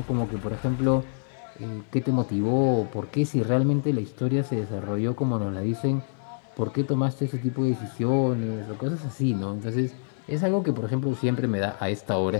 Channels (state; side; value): silent; right; digital silence